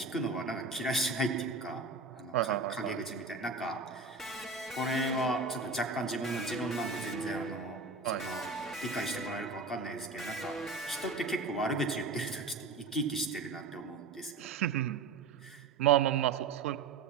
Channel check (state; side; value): quieter; left; 4.1 dB